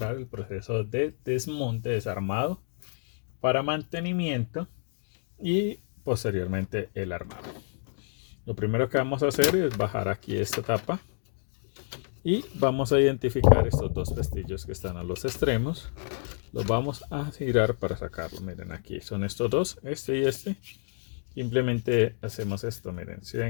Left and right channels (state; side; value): silent; right; 58 dB below the other